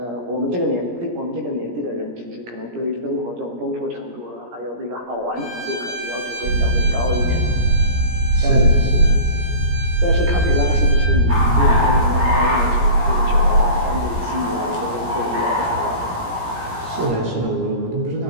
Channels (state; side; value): late; left; 17 ms